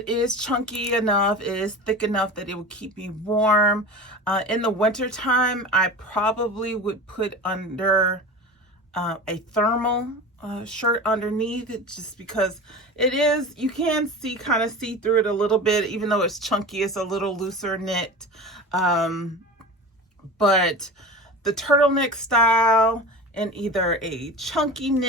is chunky enough, it is thick enough that it would keep me warm. In the winter time, I probably would put under a thermal shirt underneath it, just because it is, you can kind of see through it a little bit, even though it's chunky. It's a little looser knit. But the turtleneck style in either a chunky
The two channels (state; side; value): normal; both; correlation 0.32